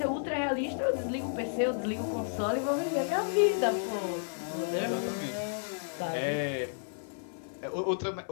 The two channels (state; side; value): silent; right; digital silence